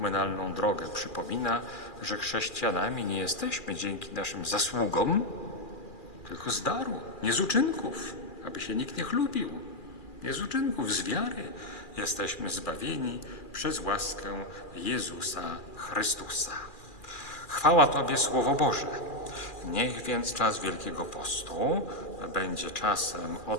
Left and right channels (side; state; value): right; late; 2.4 ms